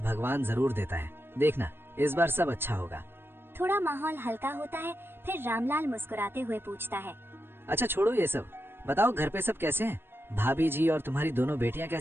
भगवान जरूर देता है। देखना, इस बार सब अच्छा होगा। थोड़ा माहौल हल्का होता है, फिर रामलाल मुस्कुराते हुए पूछता है। अच्छा छोड़ो ये सब, बताओ घर पे सब कैसे हैं? भाभी जी और तुम्हारी दोनों बेटियां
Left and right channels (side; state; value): left; late; 0.11 ms